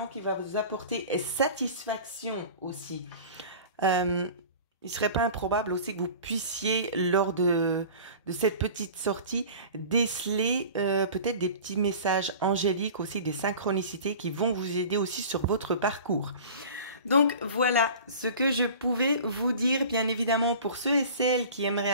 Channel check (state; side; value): inverted; both; correlation -0.40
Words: qui va vous apporter satisfaction aussi. Il serait pas improbable aussi que vous puissiez, lors de cette petite sortie, déceler peut-être des petits messages angéliques aussi, des synchronicités qui vont vous aider aussi sur votre parcours. Donc voilà ce que je pouvais vous dire, bien évidemment pour ceux et celles qui aimeraient